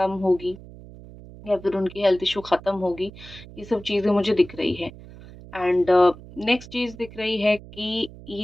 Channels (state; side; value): noise; right; hum, 18 dB below the sound